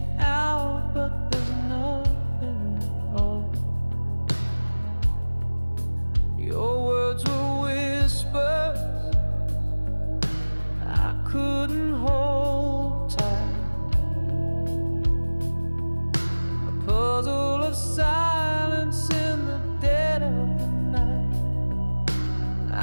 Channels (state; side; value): inverted; both; correlation -1.00